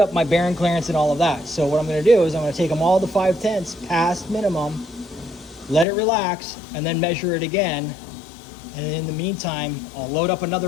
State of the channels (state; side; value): drops out; right; at 5.9 s